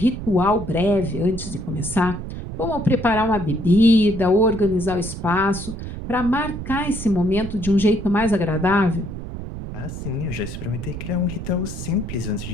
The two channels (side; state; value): right; noise; rumble, 8 dB below the sound